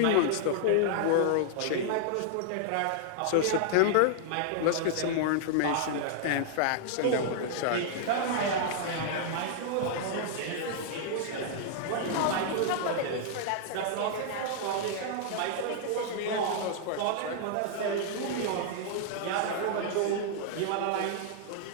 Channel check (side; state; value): both; different; correlation -0.01